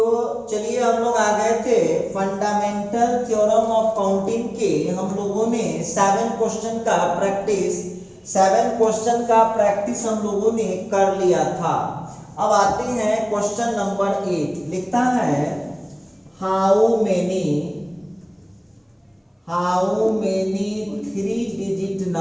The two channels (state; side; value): identical; both; correlation 1.00